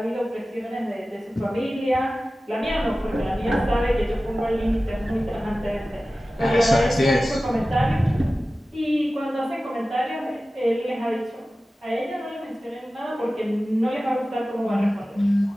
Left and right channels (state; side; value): normal; both; correlation 0.96